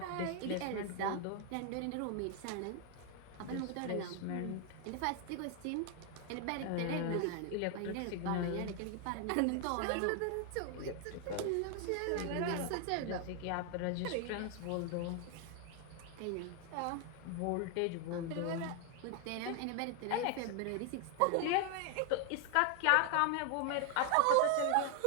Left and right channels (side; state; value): both; different; correlation 0.00